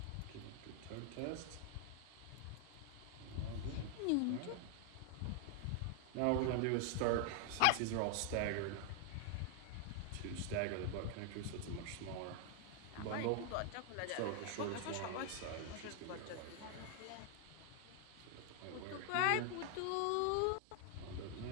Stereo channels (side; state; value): both; different; correlation 0.00